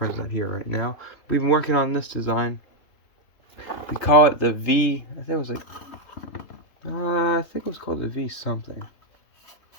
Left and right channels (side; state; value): right; late; 3.3 ms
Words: not here right now. We've been working on this design. We call it the V. I think it was like, I think it was called the V something.